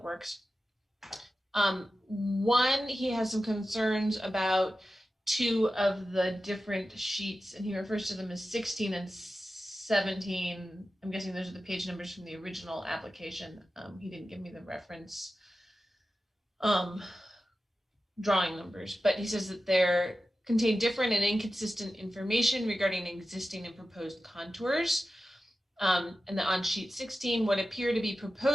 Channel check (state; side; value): normal; both; correlation 0.94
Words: Works. One, he has some concerns about two of the different sheets, and he refers to them as 16 and 17. I'm guessing those are the page numbers from the original application. He didn't give me the reference drawing numbers, but he says that they contain different and inconsistent information regarding existing and proposed contours. And that on sheet 16, what appear to be